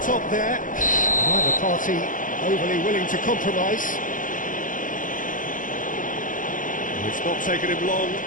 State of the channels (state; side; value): late; right; 0.38 ms